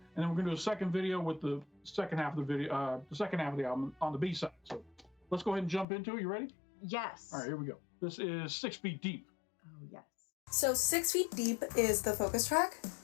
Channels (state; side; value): drops out; right; at 5.9 s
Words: then we're going to do a second video with the second half of the video, the second half of the album on the B side. So let's go ahead and jump into it. You ready? Yes. All right, here we go. This is 6 Feet Deep. Oh, yes. So 6 Feet Deep is the focus track.